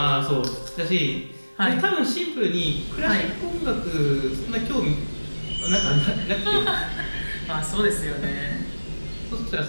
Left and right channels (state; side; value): inverted; both; correlation -1.00